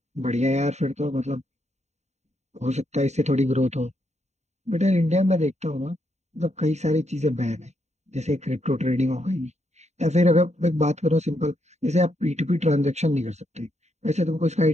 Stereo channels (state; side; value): late; left; 0.32 ms